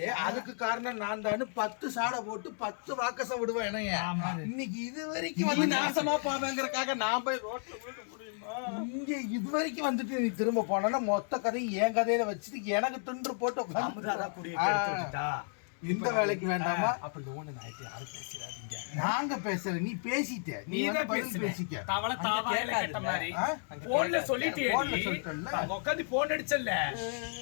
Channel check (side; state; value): right; silent; 56 dB below the other